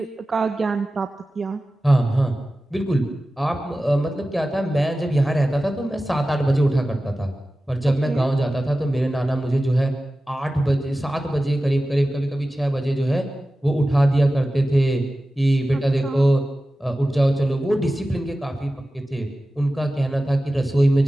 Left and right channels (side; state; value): both; normal; correlation 0.95